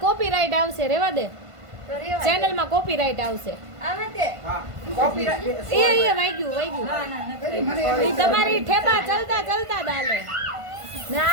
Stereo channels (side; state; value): left; late; 1.5 ms